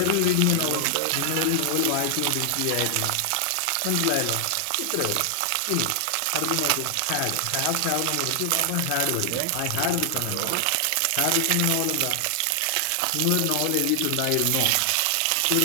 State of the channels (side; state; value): both; different; correlation 0.00